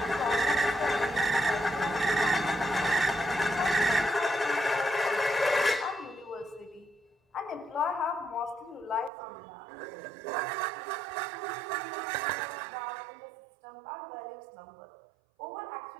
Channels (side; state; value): left; drops out; at 9.1 s